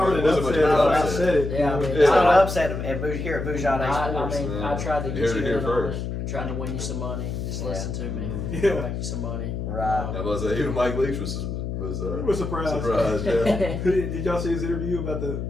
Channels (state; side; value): noise; left; hum, 4 dB below the sound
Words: really an wasn't much of upset. an I said it. Yeah, I mean, It's not an upset here at Bougie Day I Sports. mean, I Yeah. tried to You get heard you it here in on first. it, trying to win you some money. Just Yeah. listen to me. Mhm. Yeah. I'll make you some money. Right. I was even Mike Leach was We're surprised. surprised. Yeah. Did y'all see his interview about